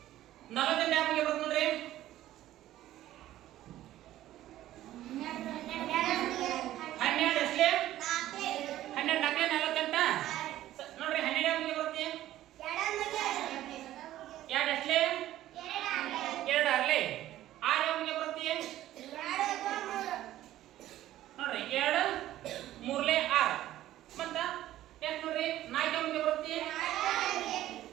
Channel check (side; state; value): left; quieter; 13.9 dB